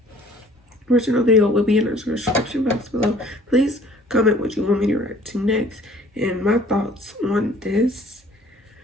Original video will be in the description box below. Please comment what you want me to react to next, and my thoughts on this.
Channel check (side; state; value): both; normal; correlation 0.53